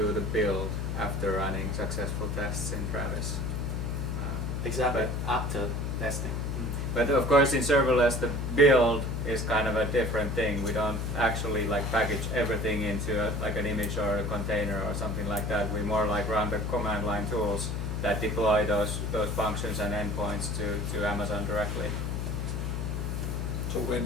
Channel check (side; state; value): left; noise; hum, 1 dB below the sound